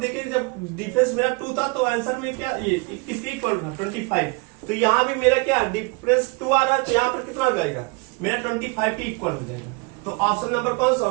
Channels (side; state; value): left; quieter; 28.7 dB